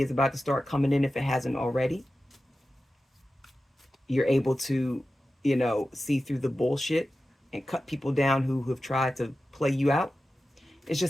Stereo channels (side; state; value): both; normal; correlation 0.93